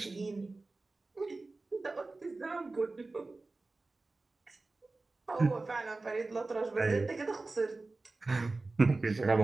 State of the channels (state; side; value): quieter; left; 3.4 dB